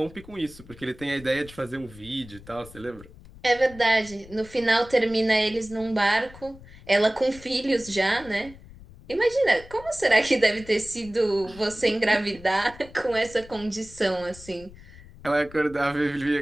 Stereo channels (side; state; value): left; noise; rumble, 20 dB below the sound